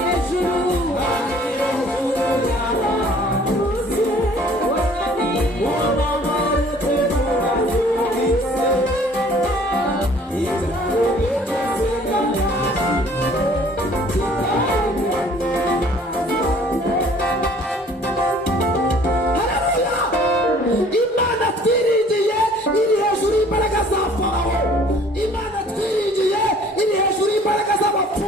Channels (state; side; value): normal; both; correlation 0.54